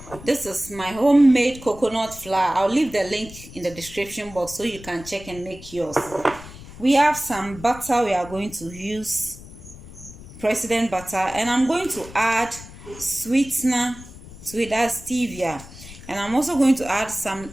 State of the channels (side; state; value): left; noise; rumble, 16 dB below the sound